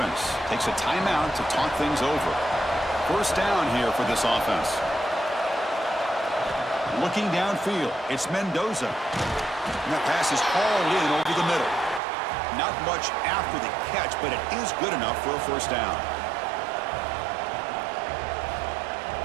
takes a timeout to talk things over. First down here for this offense. Looking downfield, it's Mendoza. And that pass is hauled in over the middle. Not much after the catch, but it is good enough for a first down.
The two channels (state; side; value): drops out; left; at 12.0 s